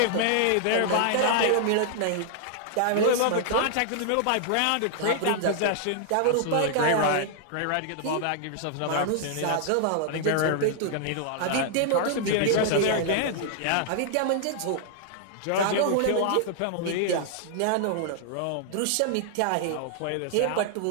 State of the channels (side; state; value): both; different; correlation -0.01